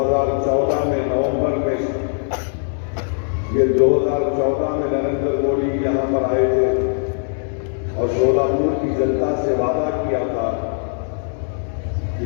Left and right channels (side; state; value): right; silent; digital silence